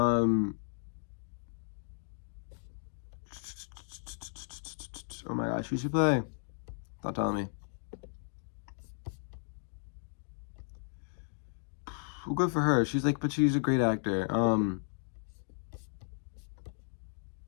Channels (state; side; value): silent; right; digital silence